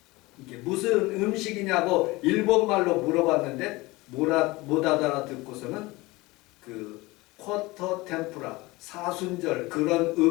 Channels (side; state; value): right; quieter; 21.7 dB